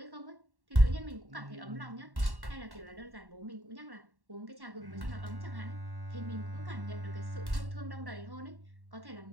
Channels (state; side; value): late; left; 1.1 ms